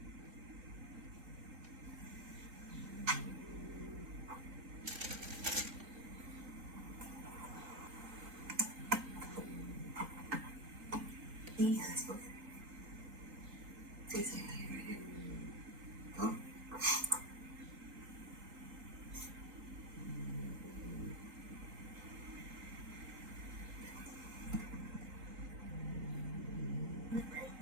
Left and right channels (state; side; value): late; left; 3.9 ms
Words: Yes. Say something right here. Huh?